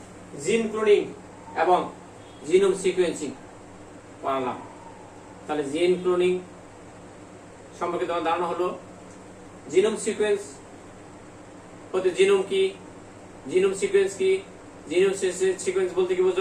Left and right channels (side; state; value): both; identical; correlation 1.00